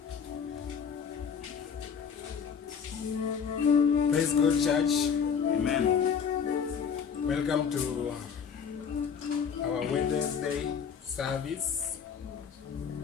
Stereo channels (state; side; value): quieter; right; 6.8 dB